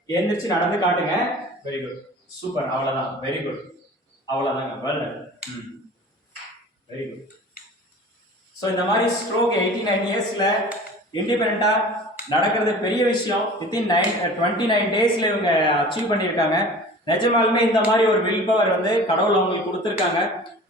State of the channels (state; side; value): normal; both; correlation 0.42